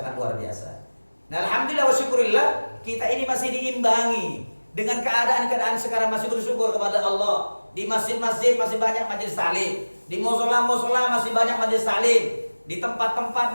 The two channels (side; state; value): both; inverted; correlation -1.00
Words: luar biasa. Nah alhamdulillah wa syukurillah, kita ini masih diimbangi dengan keadaan sekarang, masih bersyukur kepada Allah. Di masjid-masjid masih banyak majelis taklim, di musola masih banyak majelis taklim, di tempat-tempat